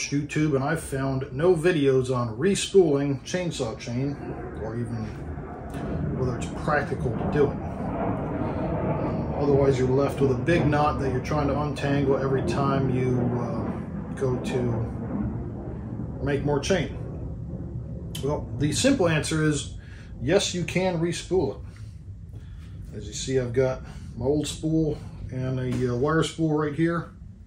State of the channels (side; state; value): both; identical; correlation 1.00